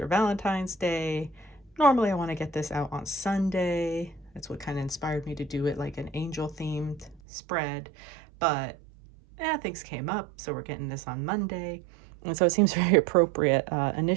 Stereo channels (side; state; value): left; drops out; at 7.2 s